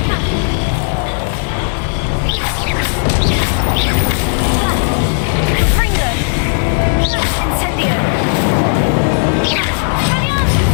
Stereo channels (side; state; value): right; silent; digital silence